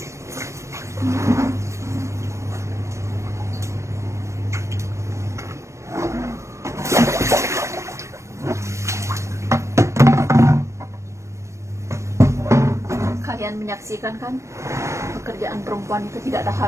Kalian menyaksikan kan, pekerjaan perempuan itu tidak ada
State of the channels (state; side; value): late; left; 0.14 ms